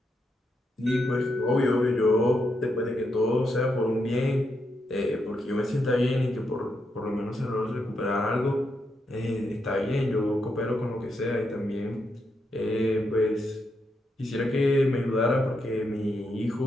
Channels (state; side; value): normal; both; correlation 0.82